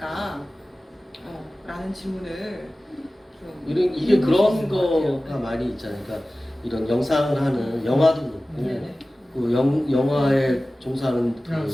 라는 질문을 좀 이게 그런 거가 많이 있잖아요. 그러니까 이런 영상을 하는 영화도 그렇고 그 영화에 종사하는 그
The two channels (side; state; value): both; normal; correlation 0.97